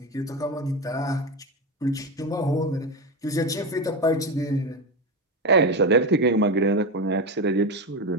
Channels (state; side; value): normal; both; correlation 0.17